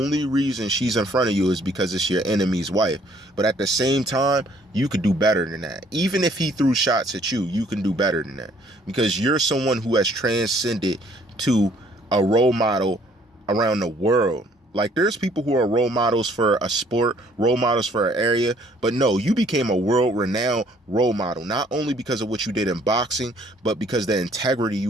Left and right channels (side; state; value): both; normal; correlation 0.61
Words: reason she's in front of you is because it's your enemy's wife. But at the same time, you could do better than that. Even if he threw shots at you, you can do better than that, because you're someone who has transcended to a role model around the world. Like, there's people who are role models for a sport, role models for an area, but no, you became a world-renowned role model, not only because of what you did in boxing, but because the integrity